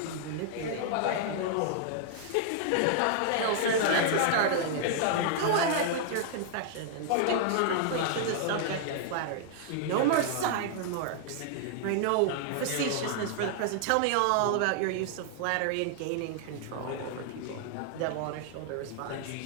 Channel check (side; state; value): both; different; correlation -0.01